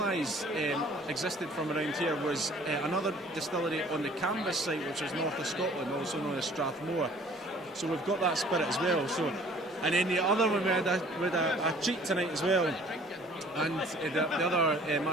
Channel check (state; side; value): normal; both; correlation 0.53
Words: existed from around here was another distillery on the Canvas site, which is north of Scotland, also known as Strathmore. So we've got that spirit as well. So, and then the other one we had a treat tonight as well. And the other